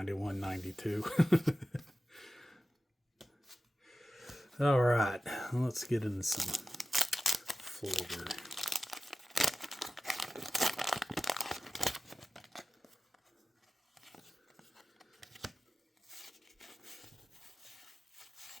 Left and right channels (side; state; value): both; normal; correlation 0.95